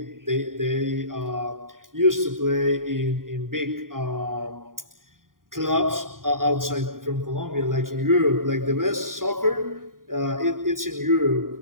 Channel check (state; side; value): late; left; 0.91 ms